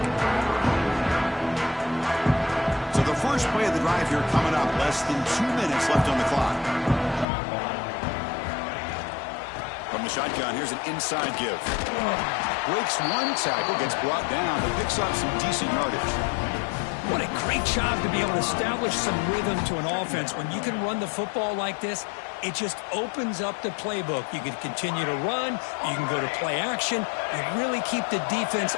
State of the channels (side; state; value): right; drops out; at 7.2 s